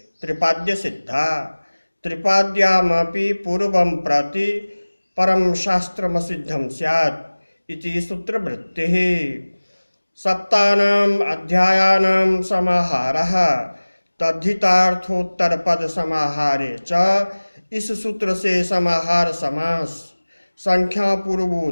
त्रिपाद्य सिद्धा त्रिपाद्यामपि पूर्वं प्रति परं शास्त्रमसिद्धं स्यात् इति सूत्रवृत्तिः। सप्तानाम् अध्यायानां समाहारः तद्धितार्थोत्तरपद समाहारे च इस सूत्र से समाहार समास संख्या पूर्वो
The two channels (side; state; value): both; inverted; correlation -1.00